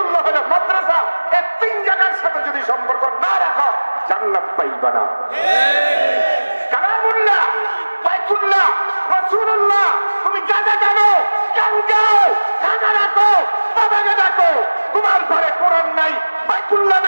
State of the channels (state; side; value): inverted; both; correlation -1.00